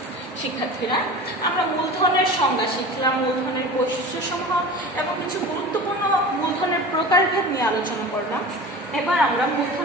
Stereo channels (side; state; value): both; normal; correlation 0.35